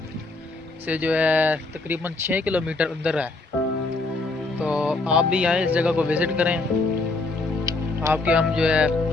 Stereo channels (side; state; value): right; quieter; 3.3 dB